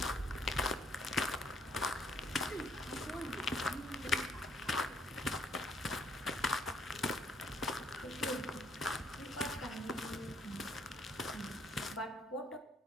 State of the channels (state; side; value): normal; both; correlation 0.66